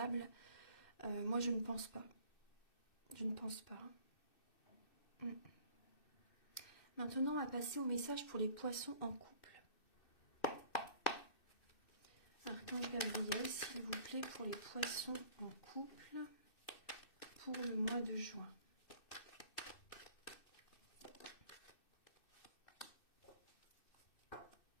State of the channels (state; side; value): late; right; 2.6 ms